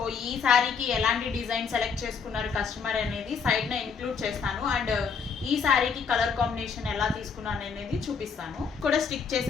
ఈ శారీకి ఎలాంటి డిజైన్ సెలెక్ట్ చేసుకున్నారు కస్టమర్ అనేది సైడ్న ఇంక్లూడ్ చేస్తాను. అండ్ ఈ శారీకి కలర్ కాంబినేషన్ ఎలా తీసుకున్నాను అనేది చూపిస్తాను. కూడా స్టిక్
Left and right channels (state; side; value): quieter; right; 5.9 dB